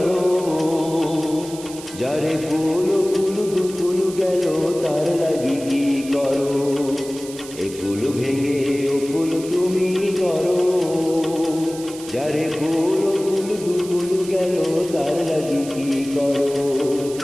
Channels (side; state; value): right; noise; hiss, 15 dB below the sound